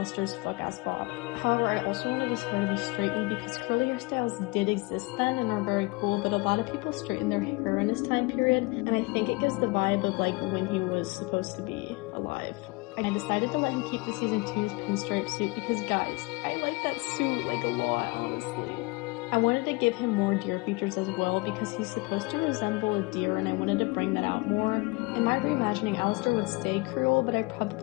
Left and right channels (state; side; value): quieter; right; 25.7 dB